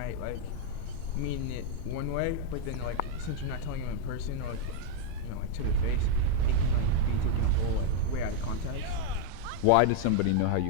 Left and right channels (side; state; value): both; different; correlation 0.00